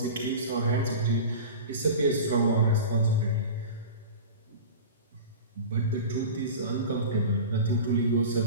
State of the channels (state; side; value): inverted; both; correlation -0.32